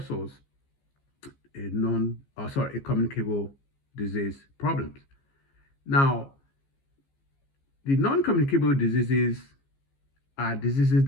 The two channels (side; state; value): right; late; 15 ms